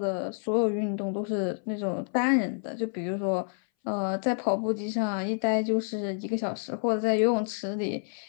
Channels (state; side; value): silent; right; 59 dB below the other